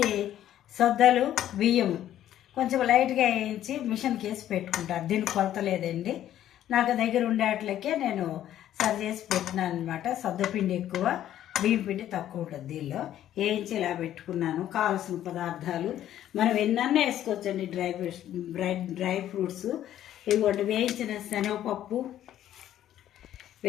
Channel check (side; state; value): right; quieter; 11.9 dB